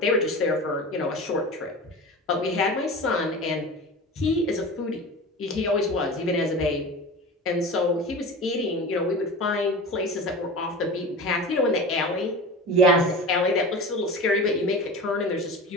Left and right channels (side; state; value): both; normal; correlation 0.32